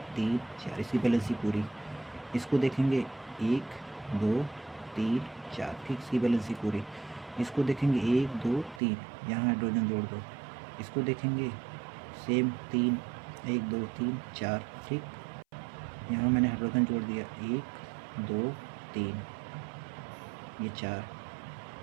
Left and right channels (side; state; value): left; drops out; at 8.8 s